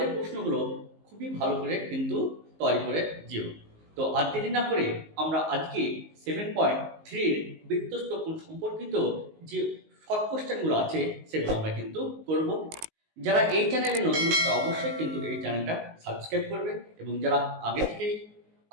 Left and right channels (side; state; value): left; late; 19 ms